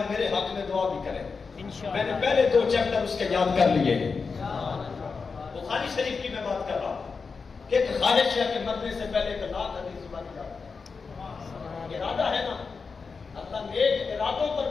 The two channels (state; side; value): quieter; right; 4.9 dB